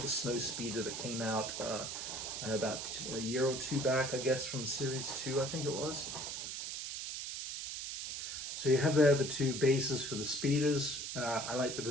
the snow speeder that came out about a year or 2 back, I guess, from Series 2, I think it was. So you have there the 2 bases for the speeders. I like the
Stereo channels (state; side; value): noise; right; hiss, 5 dB below the sound